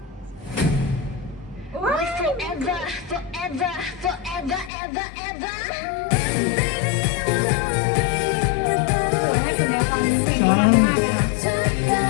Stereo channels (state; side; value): drops out; right; at 4.7 s